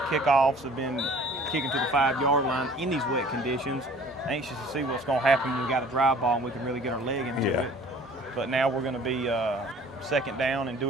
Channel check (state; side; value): normal; both; correlation 0.50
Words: Kickoffs have been kicking to the 5-yard line in these wet conditions. Anxious to see what's going to happen when we got a dry ball and we can really get our leg into it. But now we're going to be 2nd down and